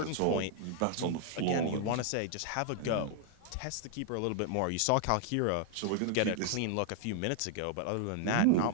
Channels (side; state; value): both; different; correlation 0.00